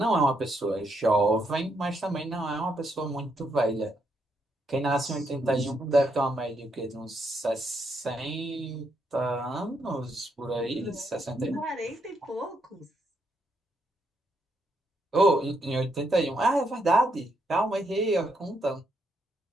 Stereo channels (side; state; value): both; normal; correlation 0.77